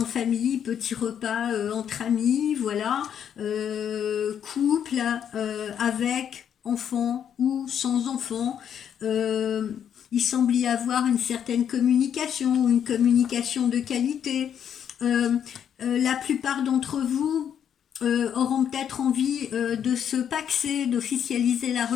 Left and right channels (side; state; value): right; quieter; 8.8 dB